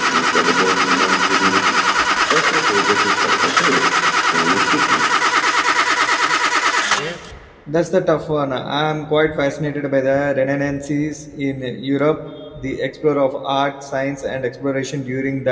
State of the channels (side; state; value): both; identical; correlation 1.00